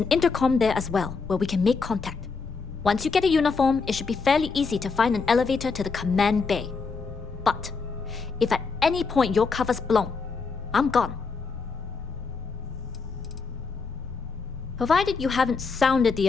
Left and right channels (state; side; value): quieter; right; 4.8 dB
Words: intercom there as well, where we can make contact. Once you get a uniform, it should be fairly easy to find an elevator to the command bay. But if at any point your cover's blown, I'm gone. Provided you haven't sounded the